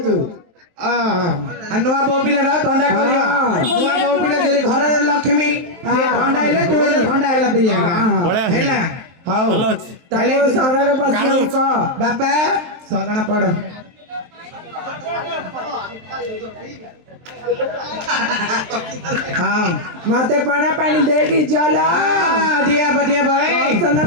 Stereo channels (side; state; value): left; late; 23 ms